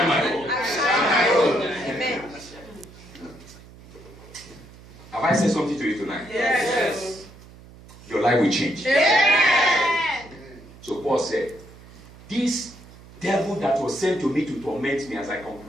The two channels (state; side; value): noise; right; hum, 20 dB below the sound